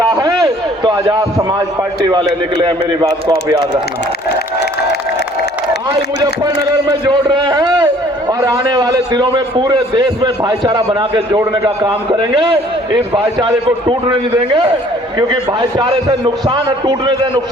है तो आजाद समाज पार्टी वाले निकले हैं। मेरी बात को आप याद रखना। आज मुजफ्फरनगर में जोड़ रहे हैं और आने वाले दिनों में पूरे देश में भाईचारा बना के जोड़ने का काम करेंगे। इस भाईचारे को टूटने नहीं देंगे, क्योंकि भाईचारे से नुकसान है, टूटने से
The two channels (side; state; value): both; normal; correlation 0.56